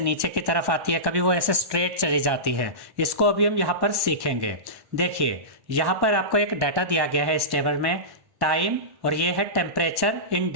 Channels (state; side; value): late; left; 1.1 ms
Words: नीचे की तरफ आती है, कभी वो ऐसे स्ट्रेट चली जाती है। इसको अभी हम यहाँ पर सीखेंगे। देखिए यहाँ पर आपको एक डाटा दिया गया है इस टेबल में, टाइम, और ये है टेम्परेचर इन